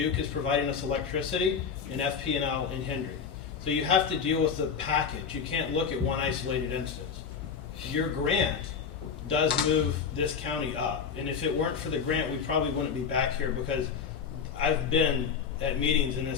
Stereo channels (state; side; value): quieter; right; 6.5 dB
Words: is providing us electricity, and FP&L in Hendry. So you have to deal with the package. You can't look at one isolated instance. Your grant does move this county up. And if it weren't for the grant, we probably wouldn't be back here, because I've been at meetings in